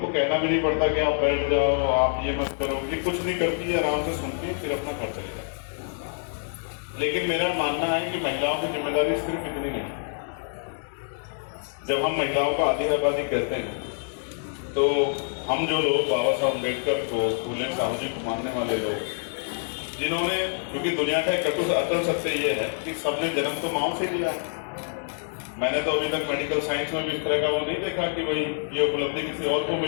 कहना भी नहीं पड़ता कि आप बैठ जाओ, आप ये मत करो, ये कुछ नहीं करती है, आराम से सुनती है, फिर अपना घर चले जाए। लेकिन मेरा मानना है कि महिलाओं की जिम्मेदारी सिर्फ इतनी नहीं। जब हम महिलाओं को आधी आबादी कहते हैं तो हम जो लोग बाबा साहब अम्बेडकर को, फूले साहू जी को मानने वाले लोग, जिन्होंने, क्योंकि दुनिया का एक अटल सत्य ये है कि सबने जन्म तो माओ से लिया है। मैंने तो अभी तक मेडिकल साइंस में भी इस तरह का वो नहीं देखा कि भाई ये उपलब्धि किसी और को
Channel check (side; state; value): right; silent; 61 dB below the other